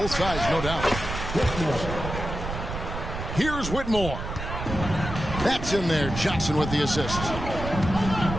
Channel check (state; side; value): noise; right; rumble, 6 dB below the sound